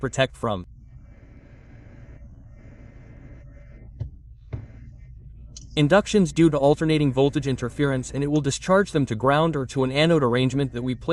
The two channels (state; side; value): identical; both; correlation 1.00